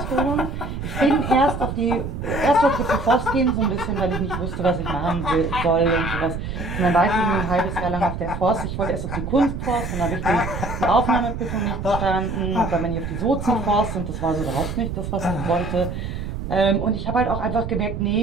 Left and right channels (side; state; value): right; noise; rumble, 6 dB below the sound